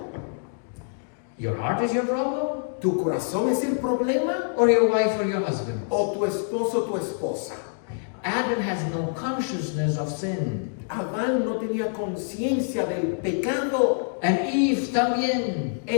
Your heart is your problem? tu corazón es el problema Or your wife or your husband? o tu esposo o tu esposa. Adam has no consciousness of sin. Adán no tenía conciencia del pecado. And Eve también.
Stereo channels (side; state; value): right; silent; digital silence